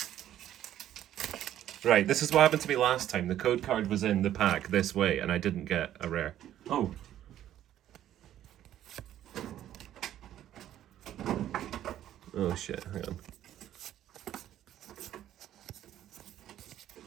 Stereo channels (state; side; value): quieter; left; 11.9 dB